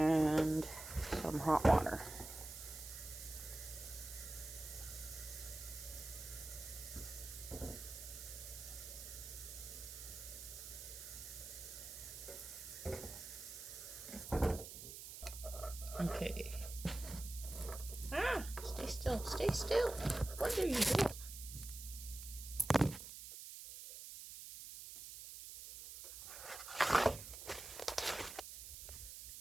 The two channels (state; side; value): noise; right; hiss, 10 dB below the sound